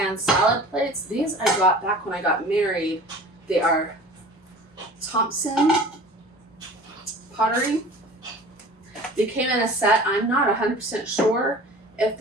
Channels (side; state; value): both; normal; correlation 0.42